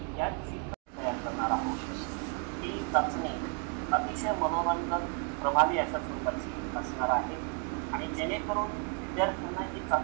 याची तयार करणार आहोत। ही चाचणी अतिशय मनोरंजक, प्रभावी अशा स्वरूपाची असणार आहे आणि जेणेकरून विद्यार्थ्यांना ही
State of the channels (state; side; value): quieter; left; 37.0 dB